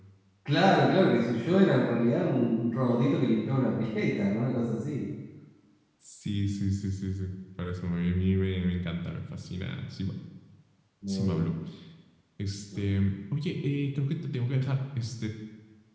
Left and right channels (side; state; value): both; identical; correlation 1.00